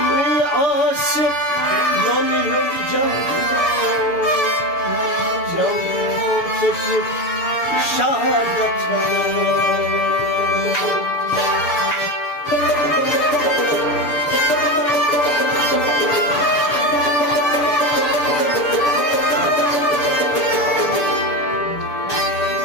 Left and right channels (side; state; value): right; late; 6.9 ms